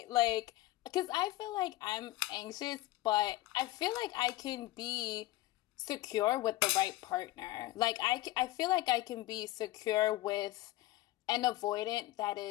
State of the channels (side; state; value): right; quieter; 16.8 dB